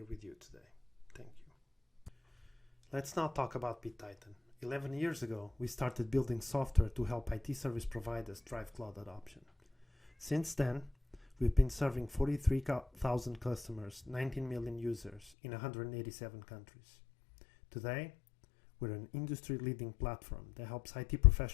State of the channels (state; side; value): drops out; right; at 15.2 s